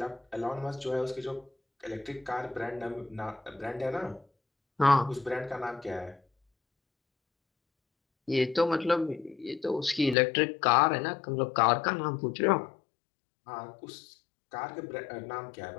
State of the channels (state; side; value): drops out; right; at 10.2 s